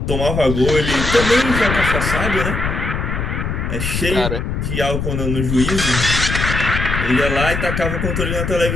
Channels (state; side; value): noise; left; rumble, 2 dB below the sound